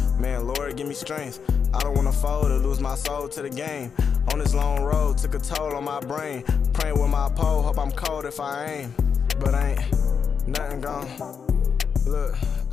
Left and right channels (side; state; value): right; quieter; 6.5 dB